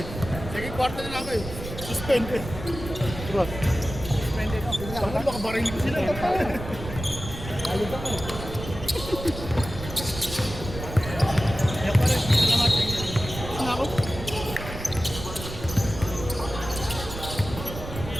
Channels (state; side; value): noise; right; rumble, 9 dB below the sound